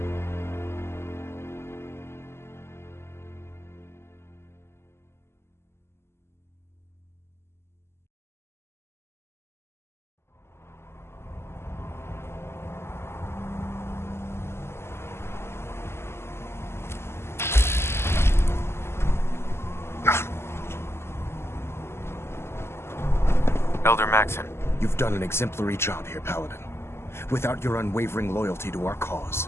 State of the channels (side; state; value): right; late; 0.12 ms